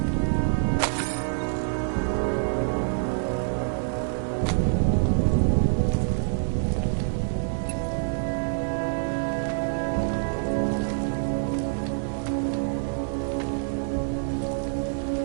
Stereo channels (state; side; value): silent; left; 61 dB below the other